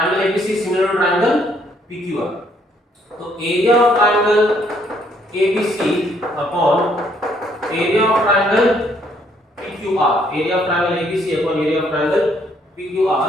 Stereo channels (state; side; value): normal; both; correlation 0.68